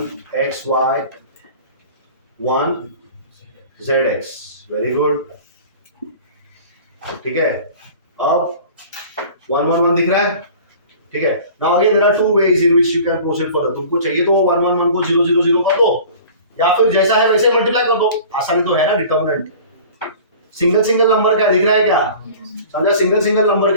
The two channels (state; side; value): inverted; both; correlation -0.43